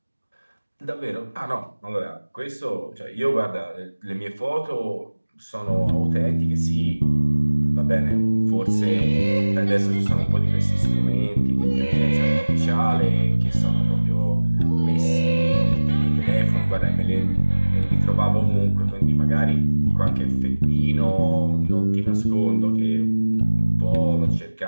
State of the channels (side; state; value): both; inverted; correlation -1.00